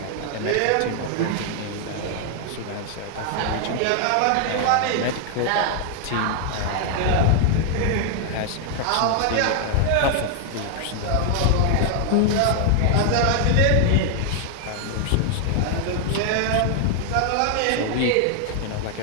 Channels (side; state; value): both; different; correlation 0.00